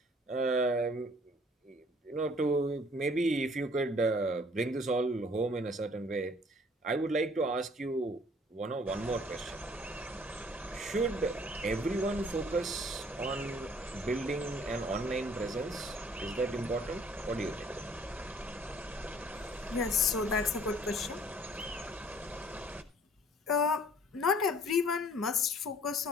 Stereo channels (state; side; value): normal; both; correlation 0.57